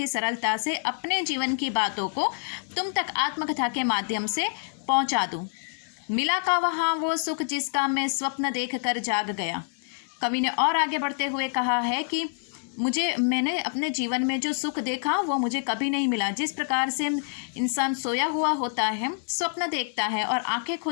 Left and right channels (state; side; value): silent; right; digital silence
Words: सरलता से अपने जीवन की बातों को तुम तक आत्मकथा के माध्यम से पहुँचा दूँ। मिला का वहाँ वो सुख जिसका मैं स्वप्न देख कर जाग गया। कवि ने और आगे बढ़ते हुए कहा है कि मैंने अपने जीवन में जो सुख देखा वो मुझे कभी नहीं मिला। जिस प्रकार से इंसान सोया हुआ होता है, स्वप्न देखता है और आंखें